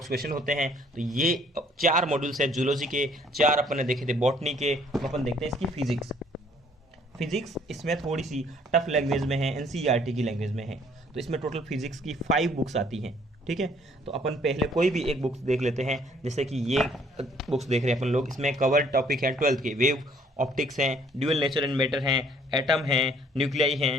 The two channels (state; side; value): normal; both; correlation 0.61